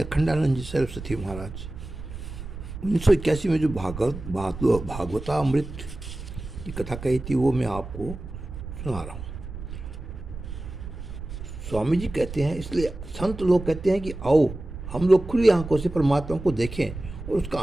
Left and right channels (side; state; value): right; noise; rumble, 10 dB below the sound